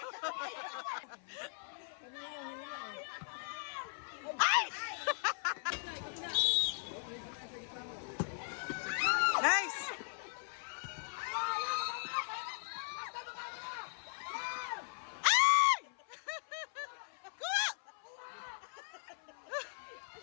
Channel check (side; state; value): right; silent; 52 dB below the other